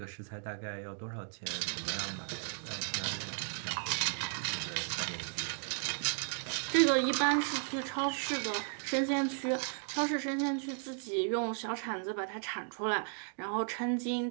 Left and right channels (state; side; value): silent; left; 54 dB below the other